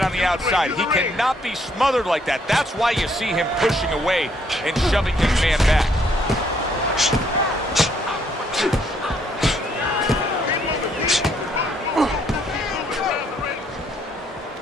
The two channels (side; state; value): both; normal; correlation 0.68